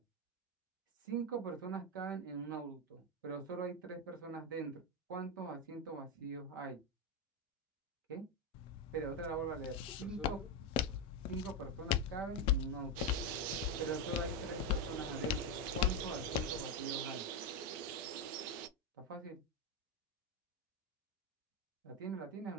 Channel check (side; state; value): both; normal; correlation 0.07